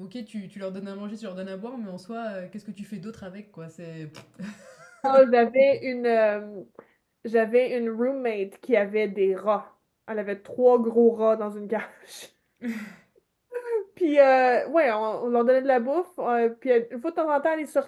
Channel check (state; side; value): identical; both; correlation 1.00